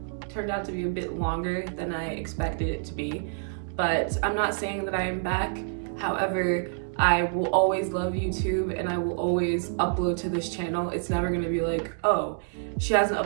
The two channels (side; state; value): left; silent; digital silence